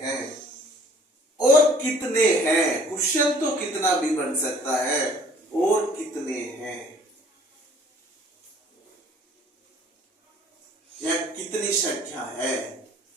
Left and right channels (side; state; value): both; normal; correlation 0.55